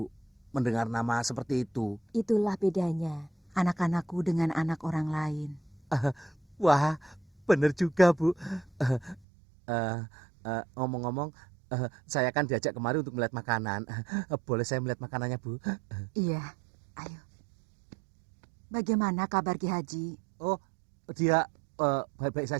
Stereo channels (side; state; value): left; drops out; at 9.2 s